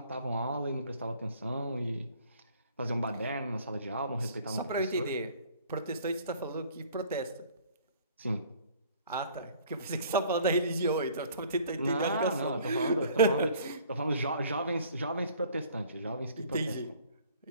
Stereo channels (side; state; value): both; inverted; correlation -0.54